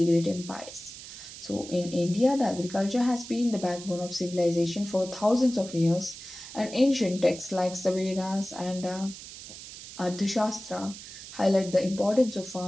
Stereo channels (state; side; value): noise; right; hiss, 14 dB below the sound